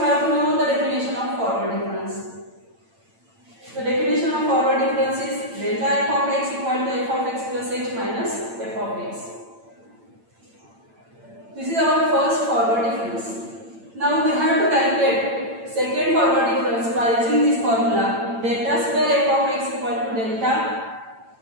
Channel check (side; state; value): left; late; 8.8 ms